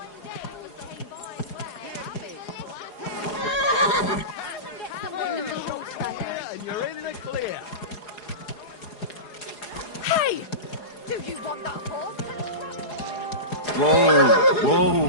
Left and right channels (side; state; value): right; late; 4.8 ms